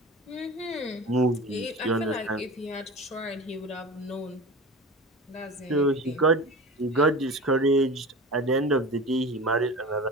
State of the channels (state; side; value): normal; both; correlation 0.33